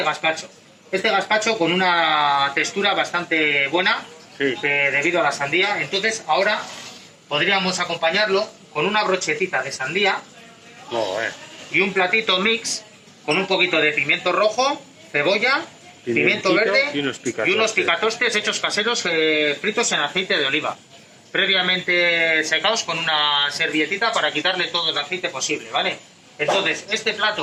gazpacho. Este gazpacho con una textura bastante buena, Sí. debido a la sandía. Entonces ahora podríamos acompañarlo con una brochetita de sandía Joder. y un platito mix con un poquito de pimiento rojo, cebolla, pimiento Pimentito verde y unos picatostes hechos caseros fritos en aceite de oliva, previamente secados con una servietita para quitarle todo el aceite posible, ¿vale? Entonces, este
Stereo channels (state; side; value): identical; both; correlation 1.00